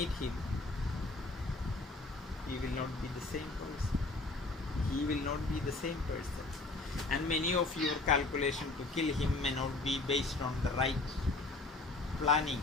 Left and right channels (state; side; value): quieter; right; 3.2 dB